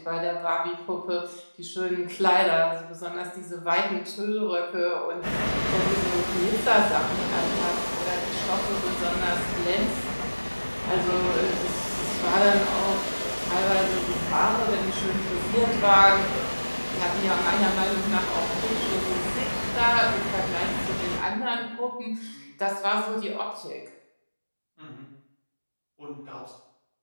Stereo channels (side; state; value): both; inverted; correlation -1.00